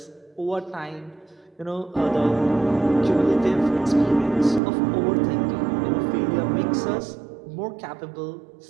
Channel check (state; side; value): drops out; left; at 4.6 s